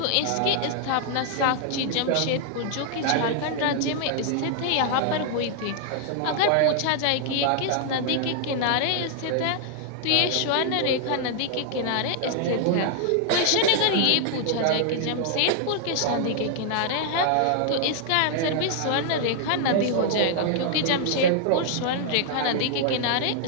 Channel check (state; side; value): different; both; correlation 0.00